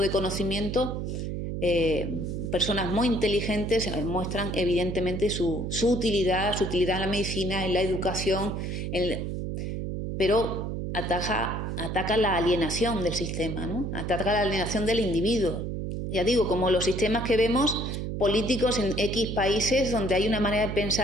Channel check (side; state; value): right; noise; hum, 4 dB below the sound